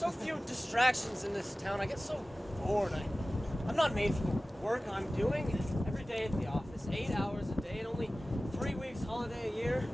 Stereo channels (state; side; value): normal; both; correlation 0.97